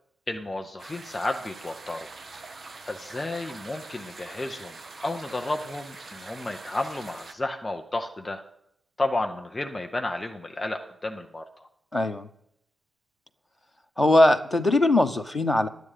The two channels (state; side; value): normal; both; correlation 0.90